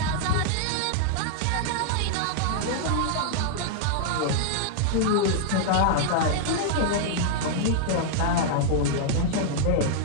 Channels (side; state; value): both; different; correlation -0.01